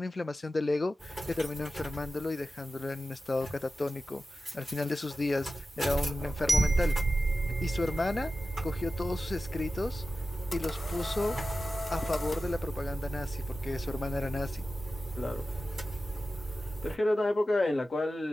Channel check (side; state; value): both; normal; correlation 0.94